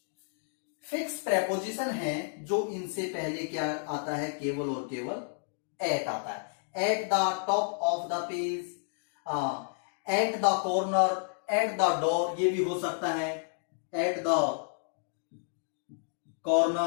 fix preposition है जो इनसे पहले क्या आता है, केवल और केवल एट आता है। At the top of the page, at the corner, at the door, ये भी हो सकता है, at the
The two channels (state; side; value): silent; right; digital silence